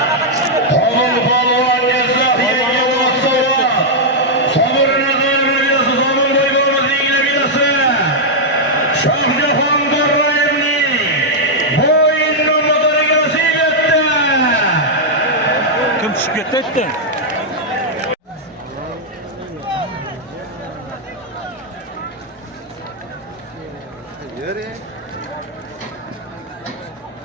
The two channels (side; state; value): both; normal; correlation -0.04